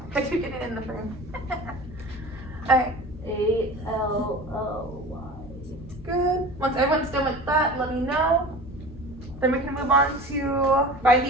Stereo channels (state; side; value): normal; both; correlation 0.37